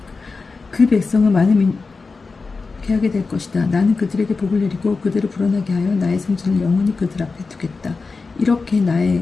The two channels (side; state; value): right; quieter; 4.2 dB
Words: 그 백성은 많은 계약이 될 것이다. 나는 그들에게 복을 내리고 그들을 불어나게 하여 나의 성전을 영원히 그들 앞에 두겠다. 이렇게 나의